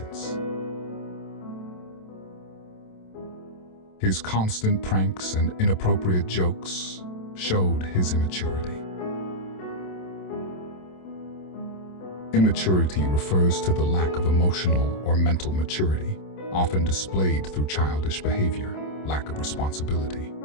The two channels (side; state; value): right; late; 27 ms